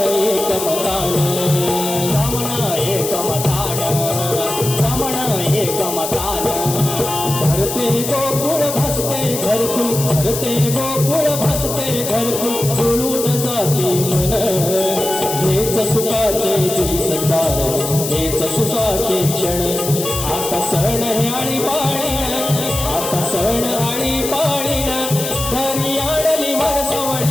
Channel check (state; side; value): noise; left; hiss, 5 dB below the sound